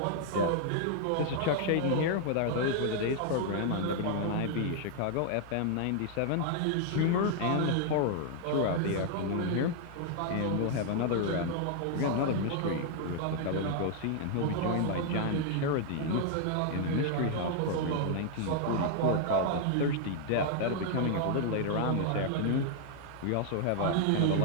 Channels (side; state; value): both; different; correlation 0.00